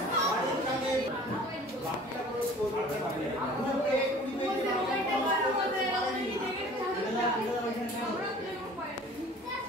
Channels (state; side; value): normal; both; correlation 0.47